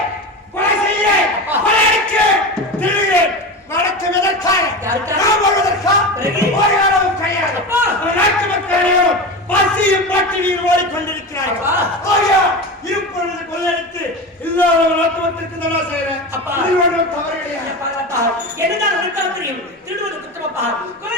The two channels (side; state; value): both; normal; correlation 0.25